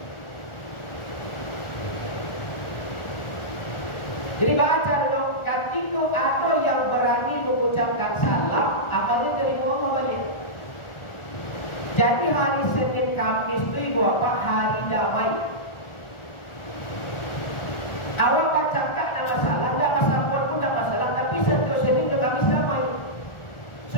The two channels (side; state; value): right; late; 1.4 ms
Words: Jadi baca dong, ketika ada yang berani mengucapkan salam, amalnya dari Allah balik. Jadi hari Senin Kamis itu ibu apa? Hari damai. Awak bacakan nama salah, tidak masalah pun tidak masalah, tapi setiap Senin ke Kamis damai.